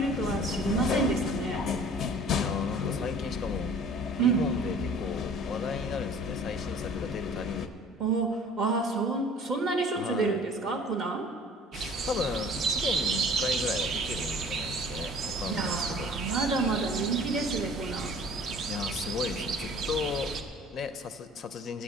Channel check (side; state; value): both; normal; correlation 0.48